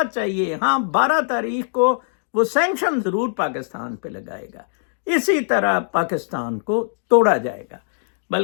چاہیے. ہاں 12 تاریخ کو وہ سینکشن ضرور پاکستان پہ لگائے گا، اسی طرح پاکستان کو توڑا جائے گا.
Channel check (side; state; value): right; silent; digital silence